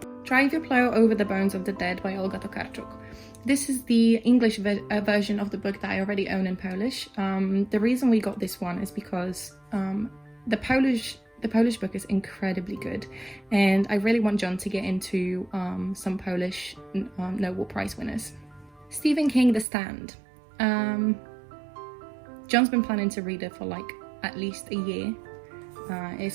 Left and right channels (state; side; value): drops out; left; at 19.7 s